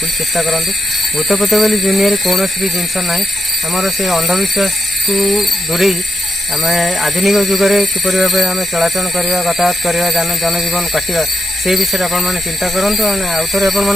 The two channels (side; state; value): both; normal; correlation 0.83